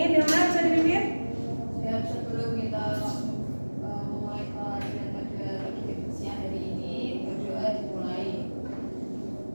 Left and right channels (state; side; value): inverted; both; correlation -1.00